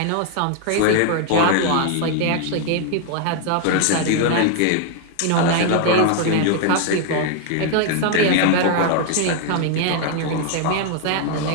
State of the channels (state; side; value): different; both; correlation 0.00